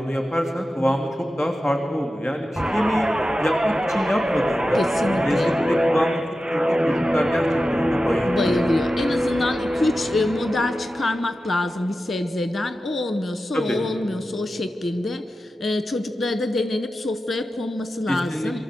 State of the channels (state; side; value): normal; both; correlation 0.93